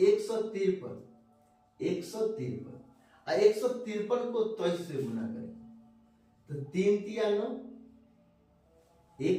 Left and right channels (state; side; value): identical; both; correlation 1.00